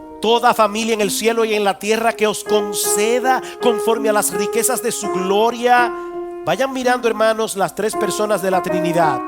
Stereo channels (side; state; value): both; identical; correlation 1.00